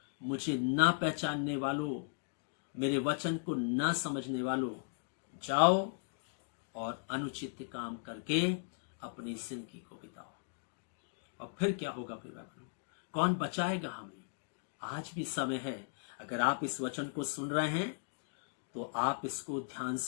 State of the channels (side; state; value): right; silent; digital silence